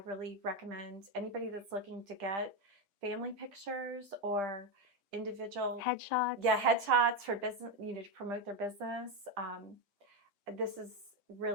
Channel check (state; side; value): late; left; 6.1 ms